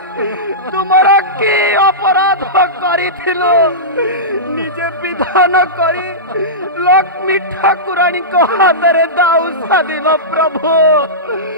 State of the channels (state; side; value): normal; both; correlation -0.17